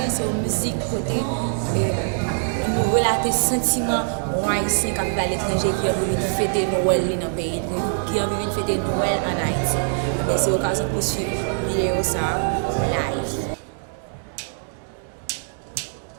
c'est une musique côté nous relater sentiments haïtiens qui vivent à l'étranger qui ont envie de fêter Noël dans le pays, qui ont envie de fêter Noël en Haïti. C'est l'occasion pour suivre la vidéo ça live.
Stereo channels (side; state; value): left; silent; digital silence